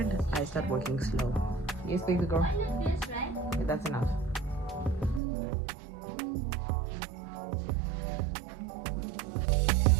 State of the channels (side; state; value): left; drops out; at 5.2 s